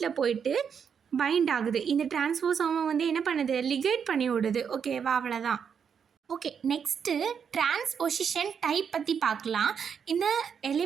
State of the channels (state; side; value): quieter; left; 7.1 dB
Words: போயிட்டு பைண்ட் ஆகுது. இந்த டிரான்ஸ்போசோமை வந்து என்ன பண்ணுது? லிகேட் பண்ணி விடுது. ஓகேவா? அவ்வளோதான். ஓகே, நெக்ஸ்ட்டு டிரான்ஸ்பொசிஷன் டைப் பற்றி பார்க்கலாம். இந்த